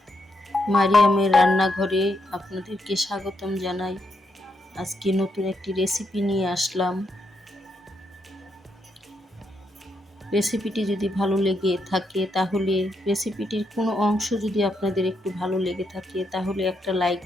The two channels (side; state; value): both; normal; correlation 0.80